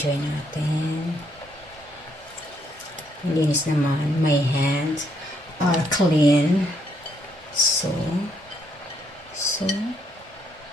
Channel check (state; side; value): normal; both; correlation 0.72